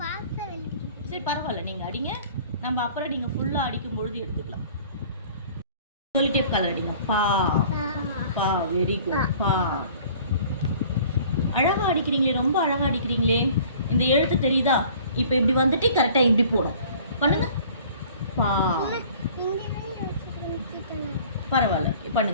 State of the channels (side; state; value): both; inverted; correlation -0.50